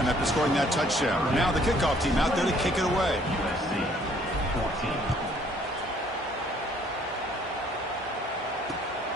after scoring that touchdown. Now the kickoff team out there to kick it away.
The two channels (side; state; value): both; normal; correlation 0.61